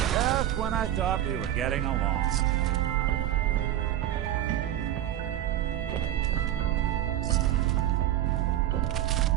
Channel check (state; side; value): quieter; left; 12.3 dB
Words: when I thought we were getting along.